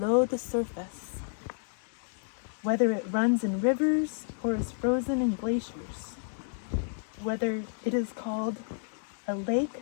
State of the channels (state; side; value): silent; right; digital silence